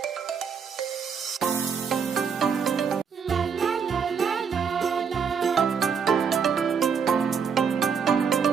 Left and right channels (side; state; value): left; quieter; 6.5 dB